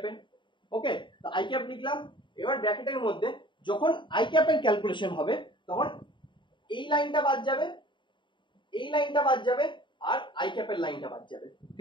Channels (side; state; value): right; late; 0.23 ms